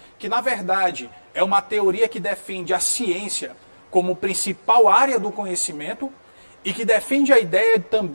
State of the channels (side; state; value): both; inverted; correlation -1.00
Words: que na verdade é uma teoria que defende a ciência como principal área do conhecimento e que defende a ideia